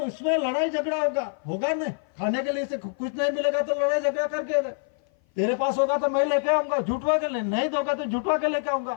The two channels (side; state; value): right; silent; 56 dB below the other